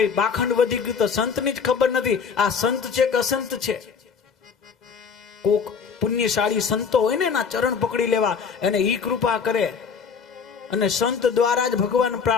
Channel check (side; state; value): right; quieter; 6.1 dB